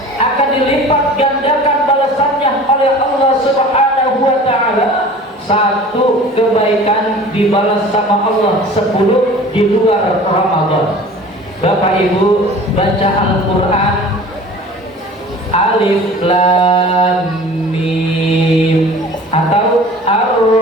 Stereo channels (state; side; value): normal; both; correlation 0.43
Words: akan dilipat gandakan balasannya oleh Allah Subhanahu wa ta'ala. Satu kebaikan dibalas sama Allah 10 di luar Ramadan. Bapak Ibu baca Al-Quran, Alif Lam Mim atau